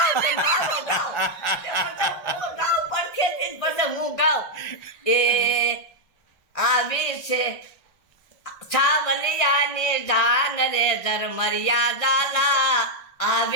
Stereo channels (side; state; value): right; late; 1.4 ms